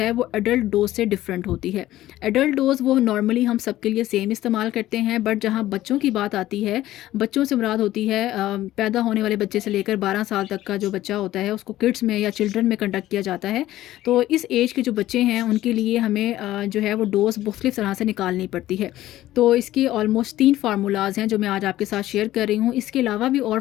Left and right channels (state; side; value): quieter; right; 14.7 dB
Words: वो एडल्ट डोज से डिफरेंट होती है। एडल्ट डोज वो नॉर्मली हम सबके लिए सेम इस्तेमाल करते हैं, बट जहाँ बच्चों की बात आती है, बच्चों से मुराद होती है पैदा होने वाले बच्चे से लेकर 12 साल तक का जो बच्चा होता है उसको किड्स में या चिल्ड्रन में कंडक्ट किया जाता है। तो इस एज के जो बच्चे हैं उनके लिए हमें जो है वो डोज मुख्तलिफ तरह से निकालनी पड़ती है। तो इसके ऑलमोस्ट 3 फार्मूलाज हैं जो मैं आज आपके साथ शेयर कर रही हूँ। इसके अलावा भी और